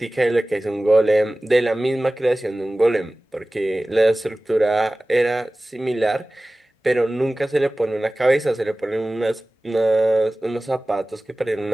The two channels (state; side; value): normal; both; correlation 0.98